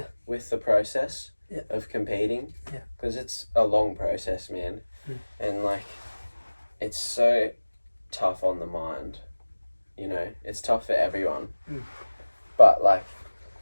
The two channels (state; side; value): inverted; both; correlation -1.00